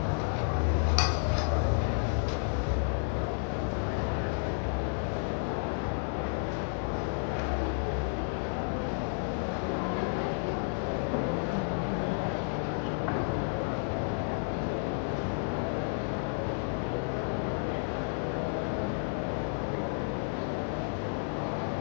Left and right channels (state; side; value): silent; right; 57 dB below the other